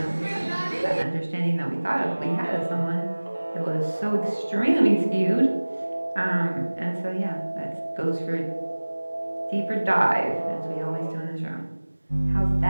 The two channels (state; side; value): inverted; both; correlation -1.00